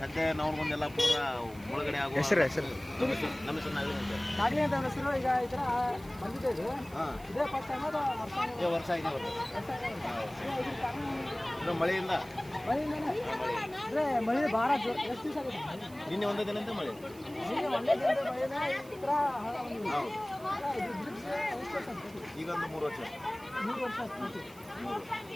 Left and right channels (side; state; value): right; noise; hiss, 22 dB below the sound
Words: ನಾವು ಮುಂದೆಲ್ಲ ಪೂರ ಮುಳುಗಡೆ ಆಗುವ ಹೆಸರು ನಮ್ಮ ಹೆಸರು ನಾಗಲಿ ಅಂತ ಅವ್ರ ಹೆಸರು. ಈಗ ಈ ಥರ ಬಂದಿದೆ ಇದು. ಇದೇ ಫಸ್ಟ್ ಟೈಮ್ ಅದು ವರ್ಷ ಆಗಿದೆ. ಮಳೆಯಿಂದ ಅಂದ್ರೆ ಮಳೆ ಭಾಳ ಜೋರು. ಎಷ್ಟು ದಿವಸ ಆಗುತ್ತೆ? ನಿನ್ನೆ ಒಂದೇ ದಿನದಿಂದ ಮಳೆ. ನಿನ್ನೆ ಒಂದೇ ದಿನದ ಮಳೆನ ಈ ಥರ ಹಳ್ಳ ಬಂದಿದೆ. ಇದು ಬ್ರಿಡ್ಜ್ ಎಷ್ಟು ವರ್ಷ ಆಗ್ತದೆ? ಈಗ ಒಂದು 3 ವರ್ಷ. 3 ವರ್ಷ ಆಗ್ತದೆ.